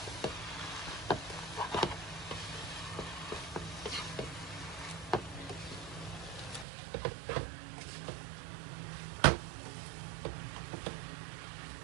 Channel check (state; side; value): drops out; left; at 6.7 s